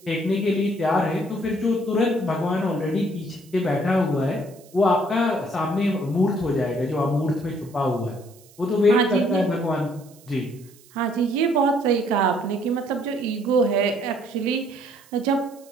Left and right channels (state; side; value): noise; right; hiss, 26 dB below the sound